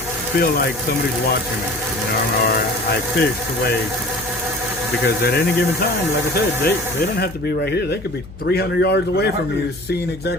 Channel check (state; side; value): noise; left; hum, 16 dB below the sound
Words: feel like somebody's watching me, you know, or I fish the way, because at any given time, like I said, they don't have to be right here. They could be 300 yards away from you, seeing